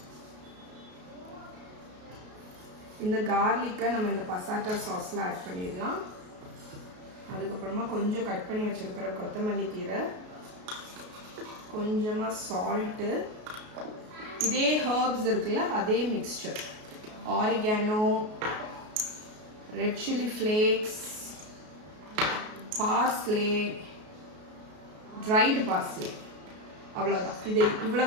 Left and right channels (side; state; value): left; late; 33 ms